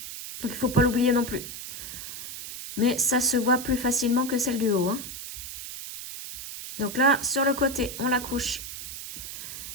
Donc il ne faut pas l'oublier non plus. Mais ça se voit plus facilement que celle du haut. Hein. Donc là, sur le côté, on la couche.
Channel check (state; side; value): noise; right; hiss, 9 dB below the sound